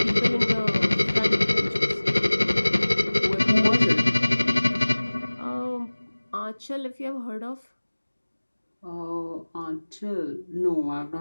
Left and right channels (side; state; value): both; inverted; correlation -1.00